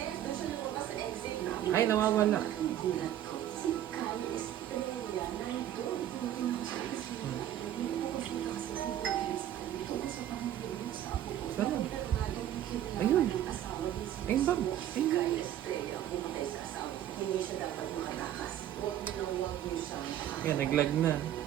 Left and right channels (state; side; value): quieter; left; 11.5 dB